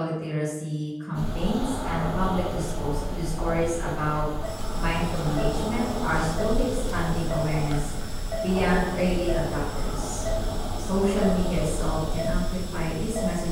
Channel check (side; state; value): both; identical; correlation 1.00